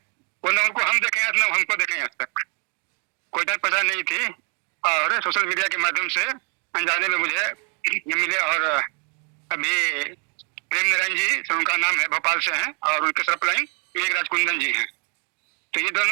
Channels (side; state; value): left; quieter; 37.8 dB